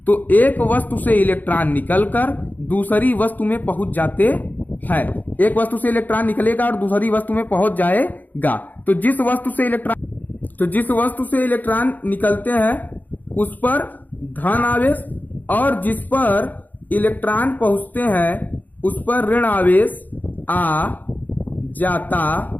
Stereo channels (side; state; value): right; late; 0.083 ms